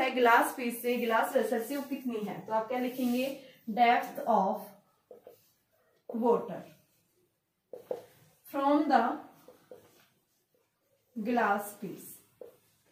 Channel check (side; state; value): both; identical; correlation 1.00